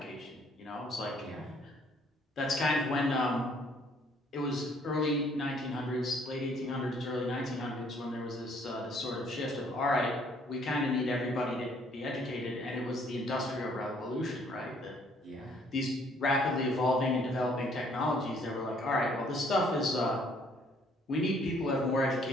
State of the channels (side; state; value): both; normal; correlation 0.62